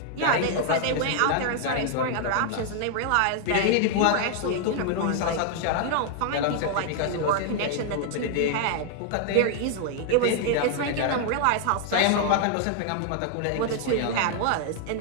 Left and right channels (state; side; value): different; both; correlation 0.00